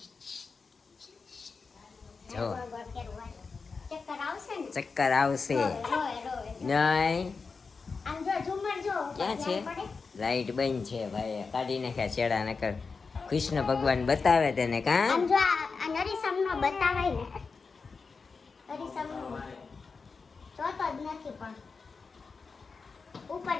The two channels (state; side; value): quieter; right; 4.7 dB